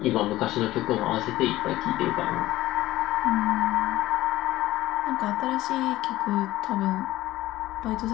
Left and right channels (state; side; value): quieter; right; 16.2 dB